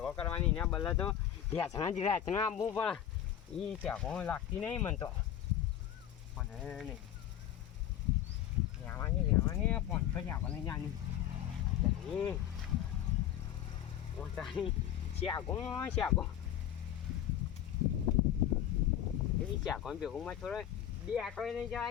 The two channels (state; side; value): quieter; right; 10.8 dB